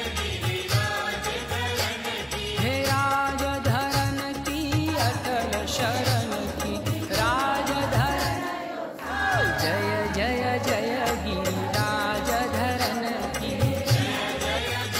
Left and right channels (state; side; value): identical; both; correlation 1.00